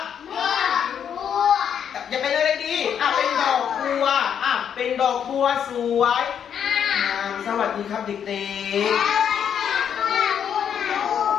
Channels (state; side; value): quieter; right; 8.3 dB